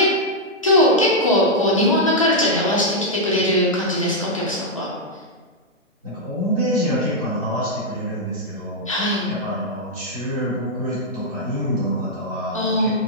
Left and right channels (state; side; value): normal; both; correlation -0.03